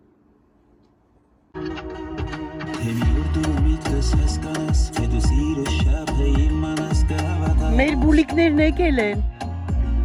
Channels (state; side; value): identical; both; correlation 1.00